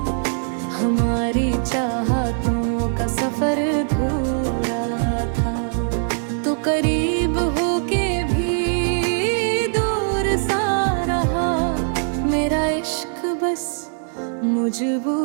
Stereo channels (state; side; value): silent; left; digital silence